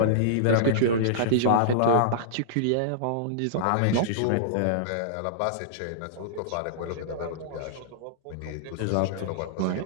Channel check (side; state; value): both; different; correlation -0.03